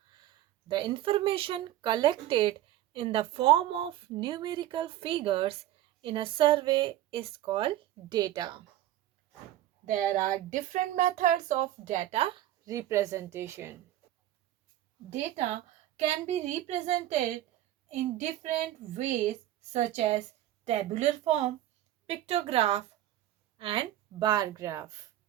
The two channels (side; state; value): left; quieter; 13.5 dB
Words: The information collected in the form of numerical figures in a survey is called data. There are different methods of data representation. Data can be represented in different ways such as tabular form, pictograph, and bar graph.